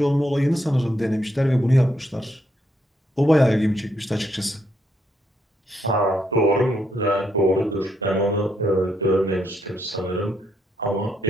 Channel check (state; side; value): normal; both; correlation 0.76